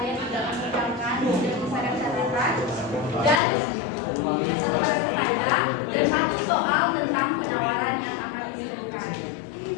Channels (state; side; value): drops out; right; at 3.4 s